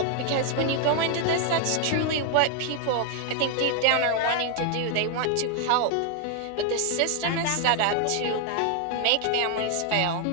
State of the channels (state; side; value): different; both; correlation 0.00